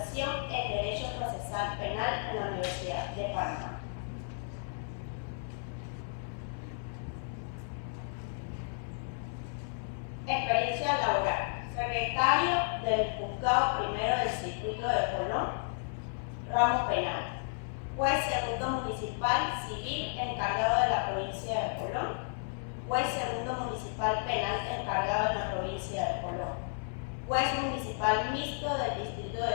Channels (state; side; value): silent; right; 56 dB below the other